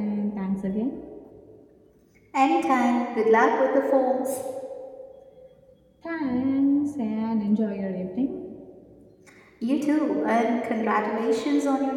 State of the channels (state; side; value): identical; both; correlation 1.00